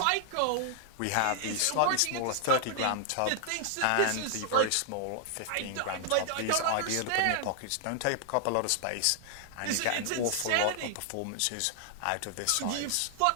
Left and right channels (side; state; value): both; different; correlation 0.00